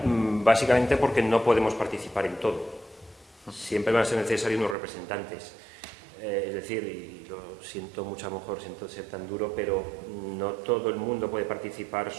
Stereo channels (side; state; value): left; drops out; at 4.8 s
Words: básicamente porque no podemos participar en todo. Siempre van a ser necesarios unos representantes. Es decir, y lo siento mucho, a lo mejor siento ser tan duro, pero no todo el mundo puede participar